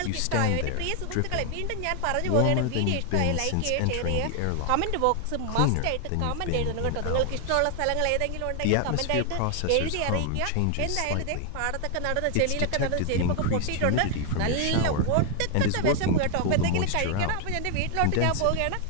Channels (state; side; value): different; both; correlation 0.00